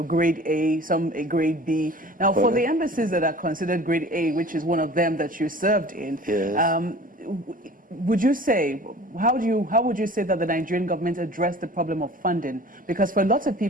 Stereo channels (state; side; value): normal; both; correlation 0.44